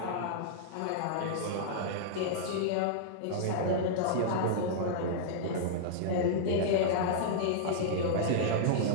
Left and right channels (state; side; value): different; both; correlation -0.02